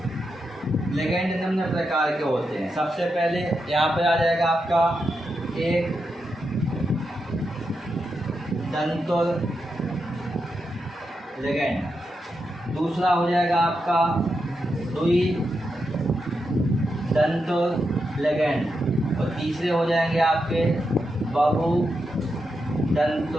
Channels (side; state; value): both; normal; correlation 0.86